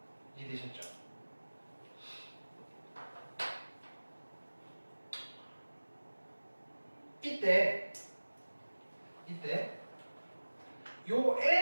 이해되셨죠? 이때 요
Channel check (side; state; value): both; inverted; correlation -1.00